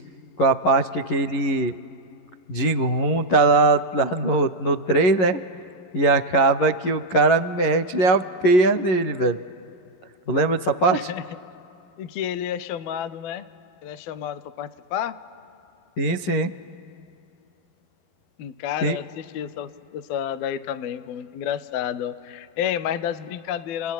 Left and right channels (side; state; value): right; late; 11 ms